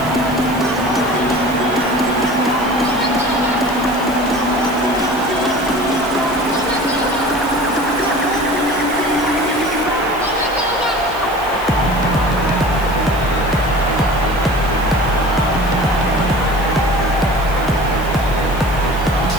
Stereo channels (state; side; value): noise; right; hiss, 18 dB below the sound